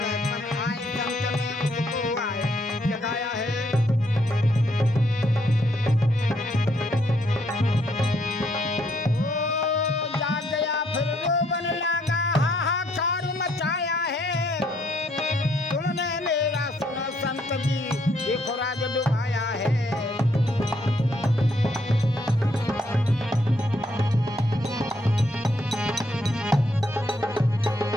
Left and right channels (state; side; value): normal; both; correlation 0.71